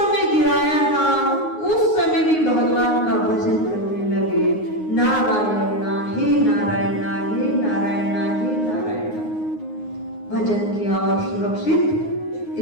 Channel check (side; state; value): right; late; 9.5 ms